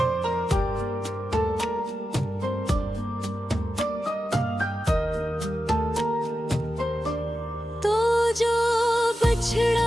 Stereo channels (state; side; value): normal; both; correlation 0.90